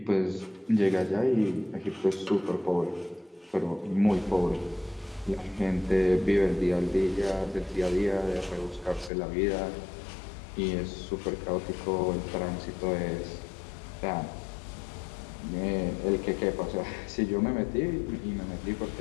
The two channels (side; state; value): right; drops out; at 9.1 s